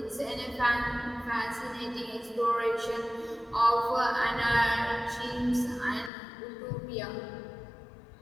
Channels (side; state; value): right; drops out; at 6.1 s